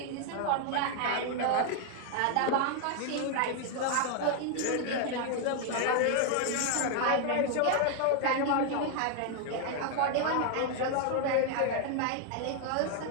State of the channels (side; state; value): both; different; correlation 0.00